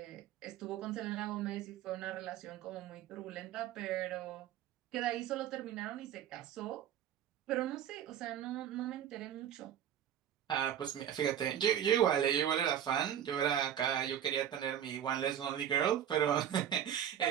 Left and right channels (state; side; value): quieter; left; 10.0 dB